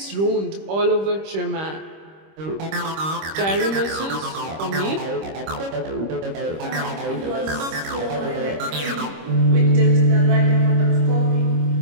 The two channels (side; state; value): left; late; 25 ms